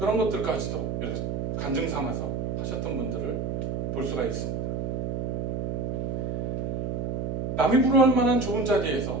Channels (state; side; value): noise; right; hum, 1 dB below the sound